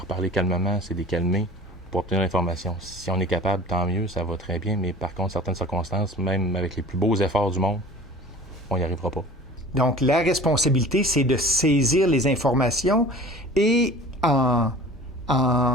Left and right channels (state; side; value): normal; both; correlation 0.43